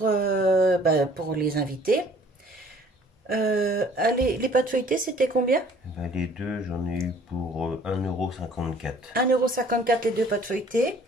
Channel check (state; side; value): normal; both; correlation 0.55